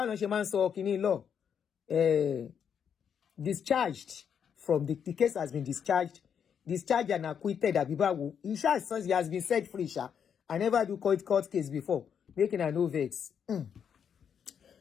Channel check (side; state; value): right; quieter; 7.7 dB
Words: discharged from the case has been discharged and acquitted. He has been set free. I never do court case before. Making a no vex.